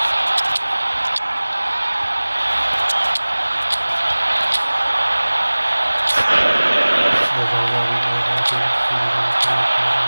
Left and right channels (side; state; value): both; inverted; correlation -1.00